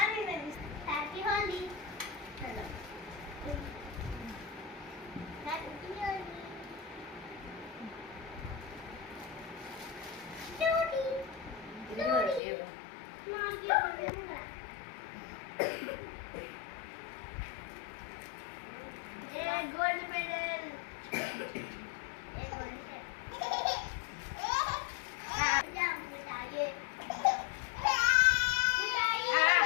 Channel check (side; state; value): right; drops out; at 12.4 s